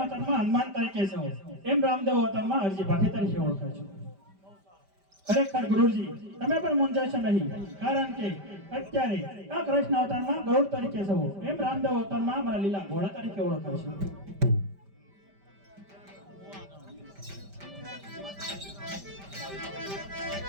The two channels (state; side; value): late; left; 5.1 ms